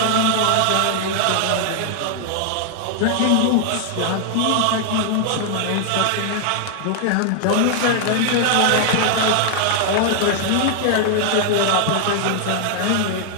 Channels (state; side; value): different; both; correlation 0.00